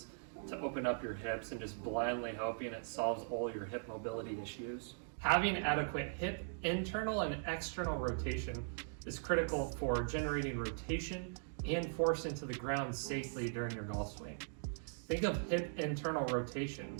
to open up your hips and just blindly hoping it solves all your hip mobility issues? Having adequate hip internal and external rotation is critical for generating rotation and force into the ground safely during your golf swing. Think of hip internal rotation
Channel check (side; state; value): left; silent; digital silence